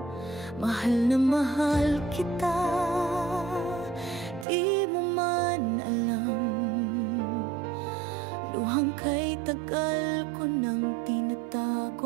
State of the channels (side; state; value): left; drops out; at 4.5 s